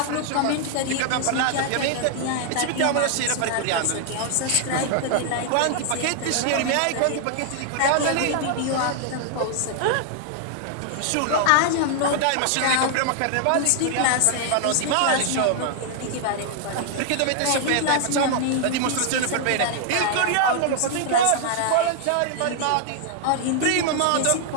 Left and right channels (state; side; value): different; both; correlation 0.00